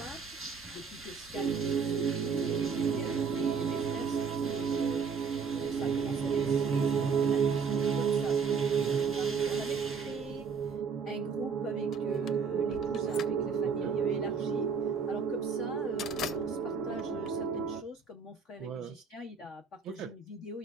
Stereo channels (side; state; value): left; quieter; 5.7 dB